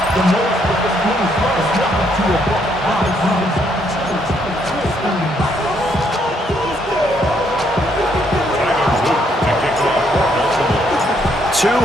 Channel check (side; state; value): both; normal; correlation 0.72